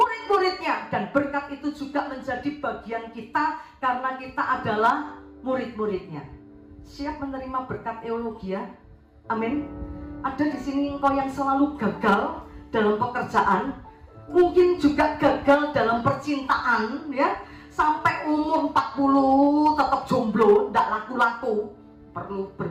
dan berkat itu juga menjadi bagian kita karena kita adalah murid-muridnya. Siap menerima berkat eulogia? Amin. Ada di sini engkau yang selalu gagal dalam pekerjaan, mungkin juga gagal dalam percintaan ya. Sampai umur 40 tetap jomblo, tidak laku-laku, perlu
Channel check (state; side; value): identical; both; correlation 1.00